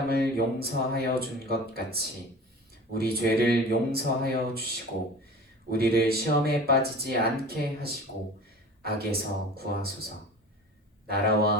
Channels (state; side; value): normal; both; correlation 0.39